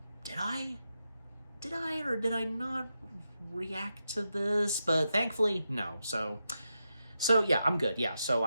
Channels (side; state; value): both; inverted; correlation -0.88